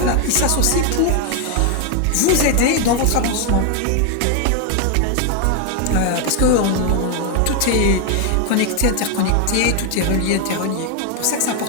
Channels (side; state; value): both; different; correlation 0.01